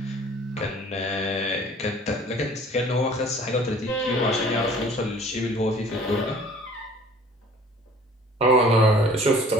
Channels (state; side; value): normal; both; correlation 0.50